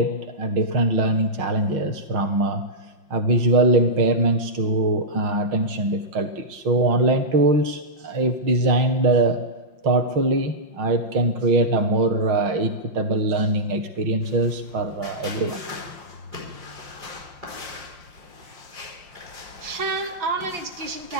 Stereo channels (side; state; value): left; late; 5.7 ms